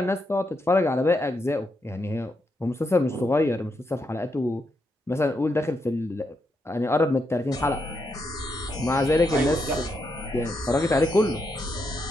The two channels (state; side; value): normal; both; correlation 0.81